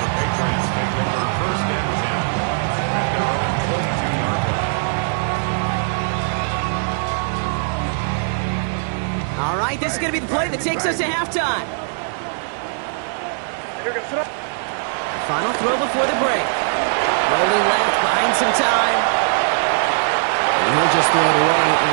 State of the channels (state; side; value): silent; left; 66 dB below the other